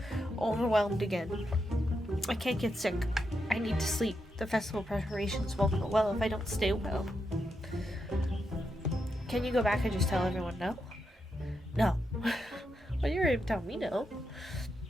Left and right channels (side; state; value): both; normal; correlation 0.84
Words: overwhelmed again. I can't get sick. I need to sleep. The festival preparations won't go well if I don't stay well. Can you go back and just tell everyone no? No. Well, you're going to tell me no.